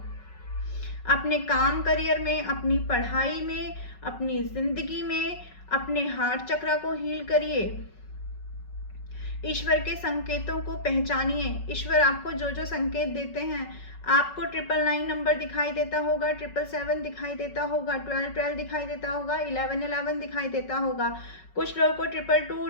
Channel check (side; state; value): right; late; 5.4 ms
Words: अपने काम करियर में, अपनी पढ़ाई में, अपनी ज़िंदगी में, अपने हार्ट चक्र को हील करिए। ईश्वर के संकेतों को पहचानिए। ईश्वर आपको जो जो संकेत देते हैं, आपको 999 नंबर दिखाई देता होगा, 777 दिखाई देता होगा, 1212 दिखाई देता होगा, 1111 दिखाई देता होगा, कुछ लोगों को 222,